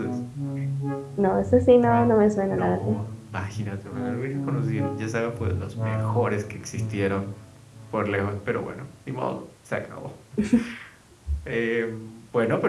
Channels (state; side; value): identical; both; correlation 1.00